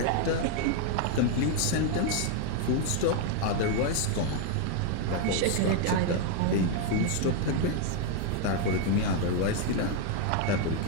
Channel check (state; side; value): different; both; correlation 0.01